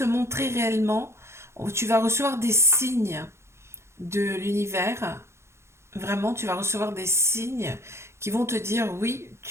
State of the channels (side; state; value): left; late; 0.13 ms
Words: montrer réellement, tu vas recevoir des signes de l'univers. Vraiment, tu vas recevoir des signes qui vont te dire oui,